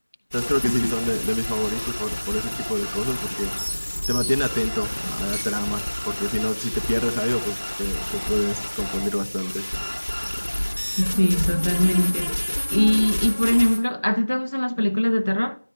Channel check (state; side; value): inverted; both; correlation -1.00